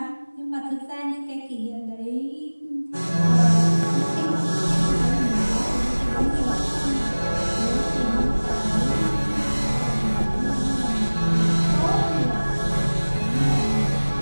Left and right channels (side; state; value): both; inverted; correlation -1.00